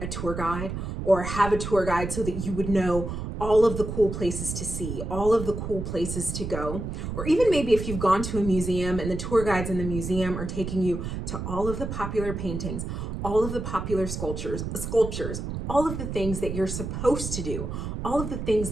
a tour guide or have a tour guide so that you would know all of the cool places to see, all of the cool places to go? Or even maybe if you've gone to a museum and the tour guides in the museum are taking you to all of the popular paintings, all of the popular sculptures, all of the things that you're supposed to do, all of the things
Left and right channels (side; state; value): right; noise; rumble, 5 dB below the sound